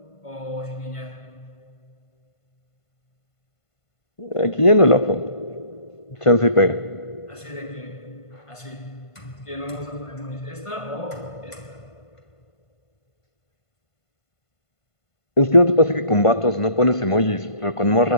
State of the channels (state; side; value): late; right; 1.5 ms